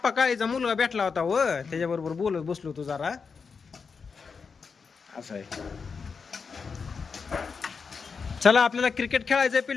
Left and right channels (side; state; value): right; quieter; 5.4 dB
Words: काळीचा मुलगा भेटला होता व त्याच्याबरोबर बोलत बसलो तू जरा. असं आहे. चला आपल्याला क्रिकेट खेळायचंय